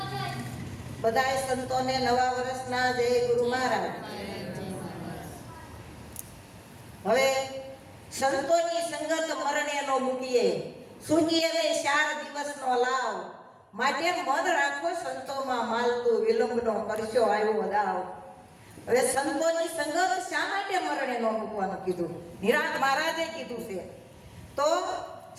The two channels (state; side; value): identical; both; correlation 1.00